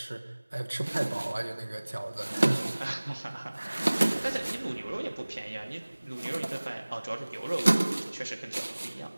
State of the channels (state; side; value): inverted; both; correlation -1.00